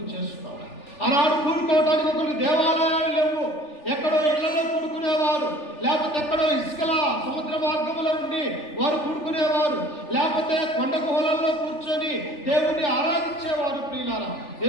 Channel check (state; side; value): late; right; 3.4 ms